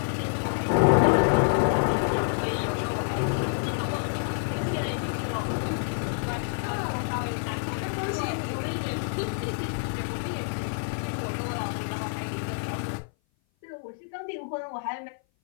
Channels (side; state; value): right; silent; 57 dB below the other